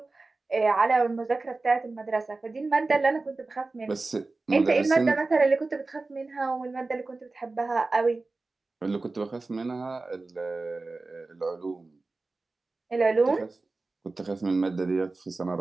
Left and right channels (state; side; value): quieter; left; 3.5 dB